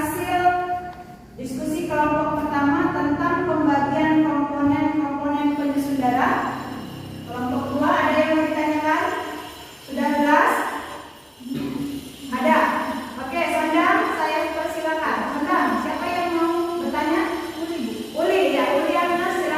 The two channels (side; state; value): both; identical; correlation 1.00